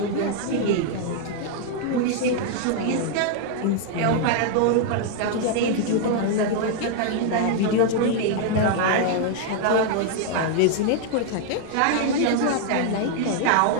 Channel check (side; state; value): both; different; correlation 0.00